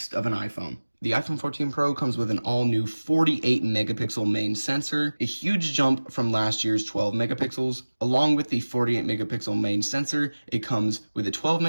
of an iPhone. The iPhone 14 Pro comes with an all-new 48 megapixel main sensor, a huge jump from last year's 12 megapixels. Along with the 48 megapixel main sensor, it comes with a 12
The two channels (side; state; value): both; inverted; correlation -1.00